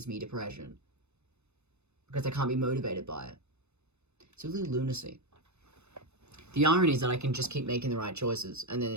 me depression. Because I can't be motivated by it. It's really lunacy. The irony is that I can just keep making the right choices, and then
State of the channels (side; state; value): left; late; 0.81 ms